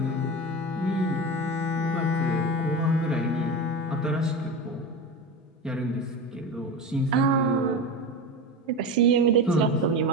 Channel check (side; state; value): both; normal; correlation 0.25